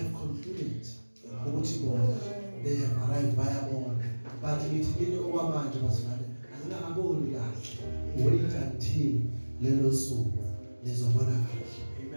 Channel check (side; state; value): both; inverted; correlation -1.00